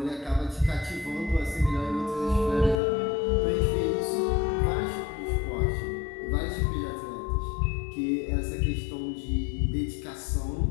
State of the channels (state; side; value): drops out; right; at 2.8 s